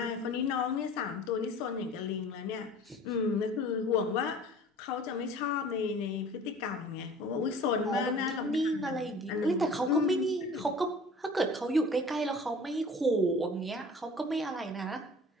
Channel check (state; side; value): normal; both; correlation 0.45